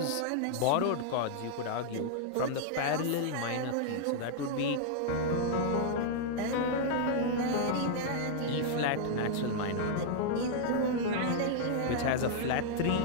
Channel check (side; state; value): both; different; correlation -0.01